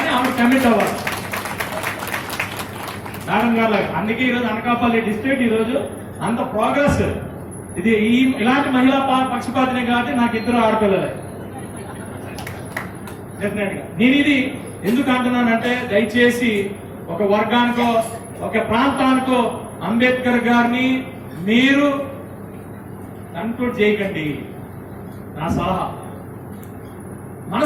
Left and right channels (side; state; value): both; identical; correlation 1.00